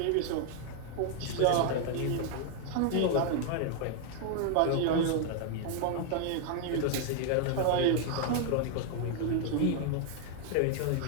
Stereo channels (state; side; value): different; both; correlation 0.00